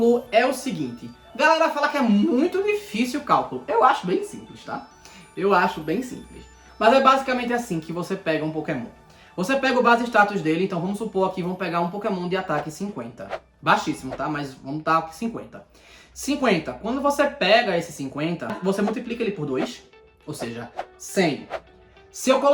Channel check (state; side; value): identical; both; correlation 1.00